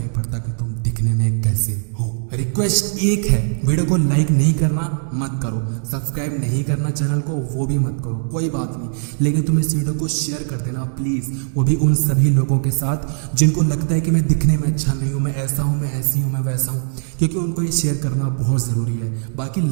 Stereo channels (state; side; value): silent; left; digital silence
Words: पड़ता कि तुम दिखने में कैसे हो। रिक्वेस्ट एक है, वीडियो को लाइक नहीं करना मत करो, सब्सक्राइब नहीं करना चैनल को वो भी मत करो, कोई बात नहीं। लेकिन तुम इस वीडियो को शेयर कर देना प्लीज, वो भी उन सभी लोगों के साथ जिनको लगता है कि मैं दिखने में अच्छा नहीं हूँ, मैं ऐसा हूँ, मैं ऐसी हूँ, मैं वैसा हूँ, क्योंकि उनको ये शेयर करना बहुत जरूरी है। बाकी